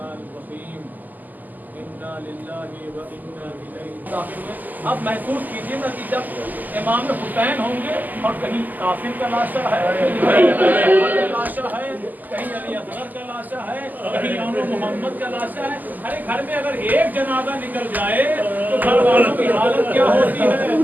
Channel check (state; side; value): late; left; 0.084 ms